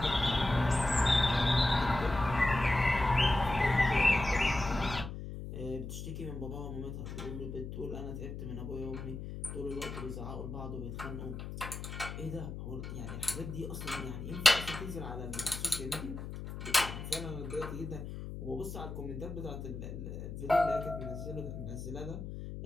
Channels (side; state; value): left; noise; hum, 8 dB below the sound